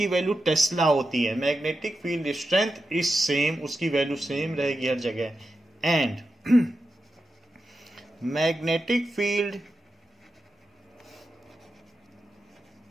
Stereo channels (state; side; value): normal; both; correlation 0.89